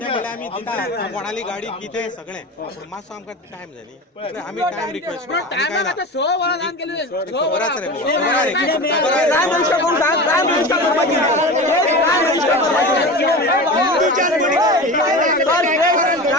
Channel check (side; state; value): both; normal; correlation 0.29